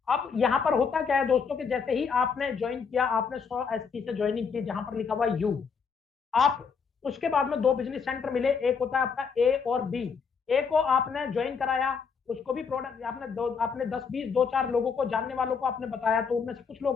अब यहाँ पर होता क्या है दोस्तों कि जैसे ही आपने ज्वाइन किया, आपने 100 एसपी से ज्वाइनिंग की जहां पर लिखा हुआ यू, आप उसके बाद में 2 बिजनेस सेंटर मिले, एक होता है आपका ए और बी। ए को आपने ज्वाइन कराया, उसको भी प्रोडक्ट आपने 10-20 2-4 लोगों को, जानने वालों को आपने बताया, तो उनमें से कुछ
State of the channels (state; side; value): quieter; right; 5.8 dB